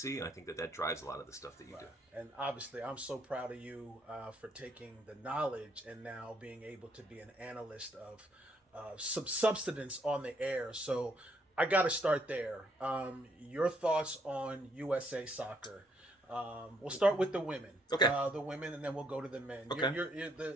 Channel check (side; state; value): both; normal; correlation 0.70